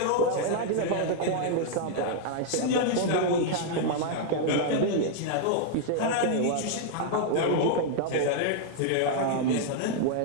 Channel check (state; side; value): different; both; correlation -0.01